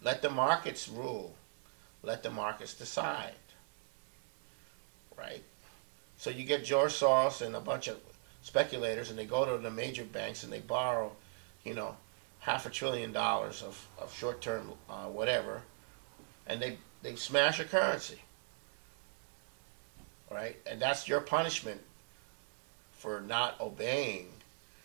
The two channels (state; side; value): silent; left; 52 dB below the other